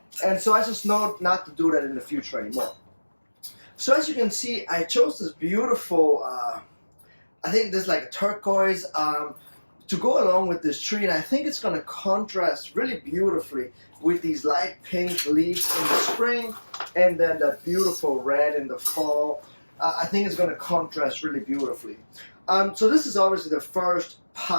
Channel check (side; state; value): both; inverted; correlation -1.00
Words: And so I just know not to do that in the future anymore. So as you can see, I chose this beautiful, I think this is like a turquoise, to go along with this tree, and I think it's going to contrast really beautifully with these light pink leaves in the spring and then that beautiful red in the fall. I think it's going to contrast really beautifully. So this is obviously the first